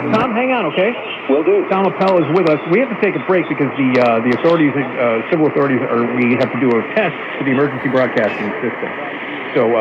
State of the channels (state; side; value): identical; both; correlation 1.00